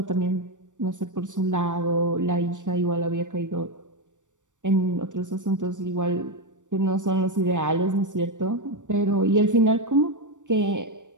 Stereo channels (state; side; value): late; left; 0.86 ms